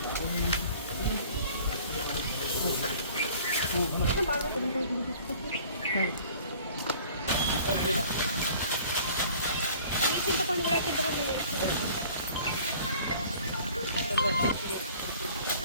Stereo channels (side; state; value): both; inverted; correlation -0.50